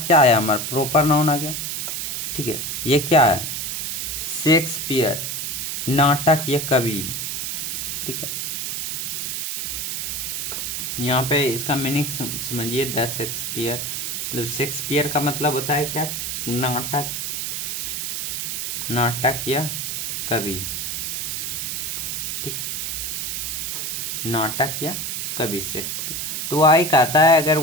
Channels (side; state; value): right; noise; hiss, 2 dB below the sound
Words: क्या आया, हमारा प्रॉपर नाउन आ गया, ठीक है। ये क्या है, शेक्सपियर, नाटक या कवि, ठीक है। यहाँ पे इसका मीनिंग समझिए, द शेक्सपियर, मतलब शेक्सपियर का मतलब होता है क्या, नाटक, नाटक या कवि, ठीक है, नाटक या कवि शेक्सपियर। तो आई कहता है अगर